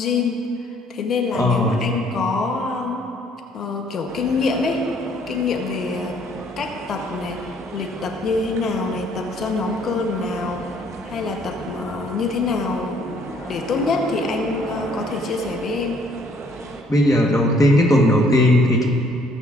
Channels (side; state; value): both; normal; correlation 0.63